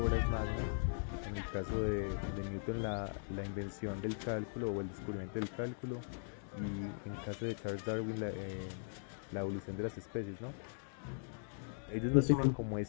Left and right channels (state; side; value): silent; right; digital silence